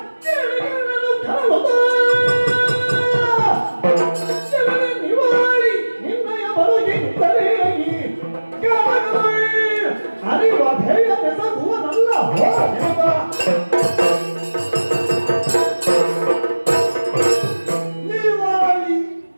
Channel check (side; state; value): both; inverted; correlation -1.00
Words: ನಿವಾಳಿ ನಿನ್ನಯ ಬರುಗಿದ್ದರೆ ಅರಿವ ಭೇಯ ಬೆಸಗುವನಲ್ಲ. ನಿವಾಳಿ